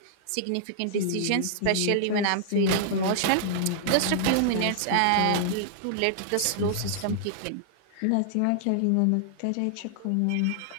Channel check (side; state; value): both; different; correlation -0.01